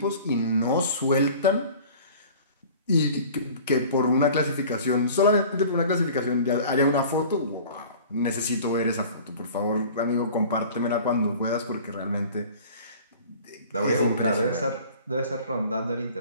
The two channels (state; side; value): inverted; both; correlation -0.44